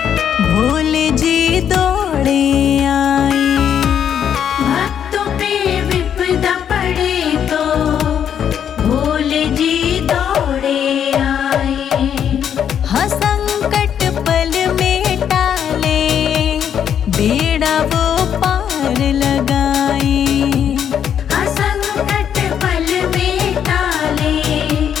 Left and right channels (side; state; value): right; quieter; 8.8 dB